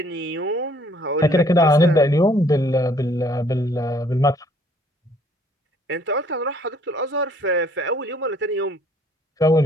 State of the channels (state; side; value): normal; both; correlation 0.61